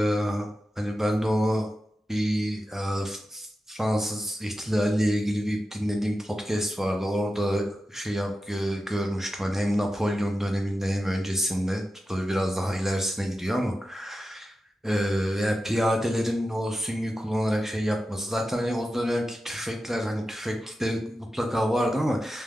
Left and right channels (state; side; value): normal; both; correlation 0.92